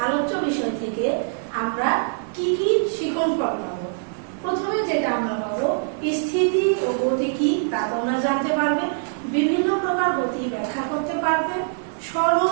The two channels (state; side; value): silent; left; digital silence